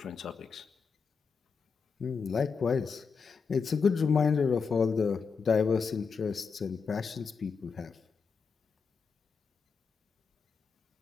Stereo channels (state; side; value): quieter; right; 5.5 dB